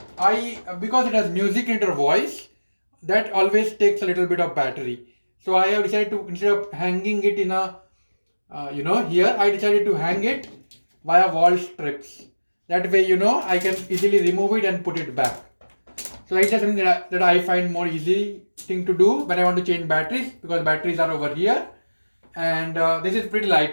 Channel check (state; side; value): inverted; both; correlation -1.00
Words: because it has music in your voice, that always takes a little bit of battery. So I have decided to, instead of hanging it in a, here, I decided to hang it via wall strips. That way, I can easily remove it and put it back. So that's just something that I find more easy thing to do when I want to change batteries, because batteries are over here, and this is pretty